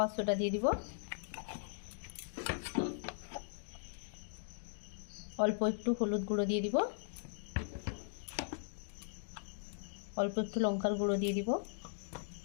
সোডা দিয়ে দিব, অল্প একটু হলুদ গুঁড়ো দিয়ে দিব, অল্প একটু লঙ্কার গুঁড়ো দিয়ে দিব।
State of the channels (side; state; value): right; silent; digital silence